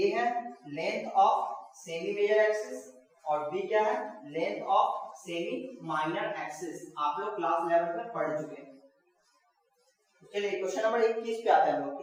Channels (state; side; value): identical; both; correlation 1.00